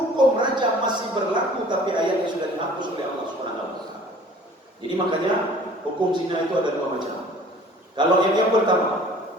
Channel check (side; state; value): both; normal; correlation 0.49